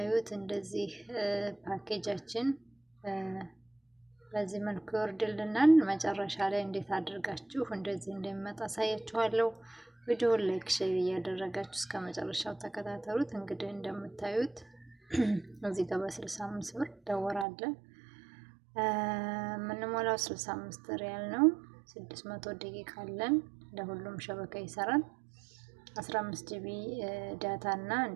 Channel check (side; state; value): left; drops out; at 17.4 s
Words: እንደዚህ ፓኬጃችን በዚህ መልኩ ይወርድልናል። መጨረሻ ላይ እንዴት አድርጋችሁ እንደዚህ እንደሚመጣ አሳያችኋለሁ። ቪዲዮውን ላይክ፣ ሼር እያደረጋችሁ እስከ መጨረሻው ተከታተሉት። እንግዲህ እንደምታዩት እዚህ ጋር በ65 ብር ደወር አለ። የምንሞላው 65 ሪያል ነው። 600 ደቂቃ አለን። ለሁሉም ሸበካ ይሰራል። 15 ጂቢ ዳታ እና